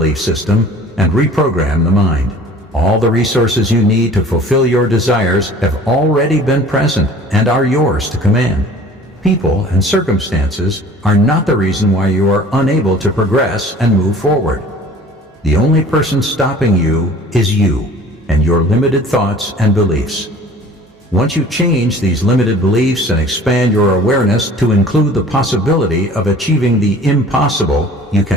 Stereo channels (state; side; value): normal; both; correlation 0.47